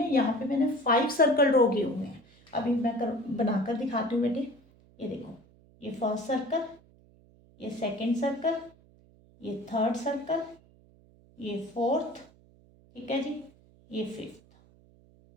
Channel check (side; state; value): right; noise; hum, 28 dB below the sound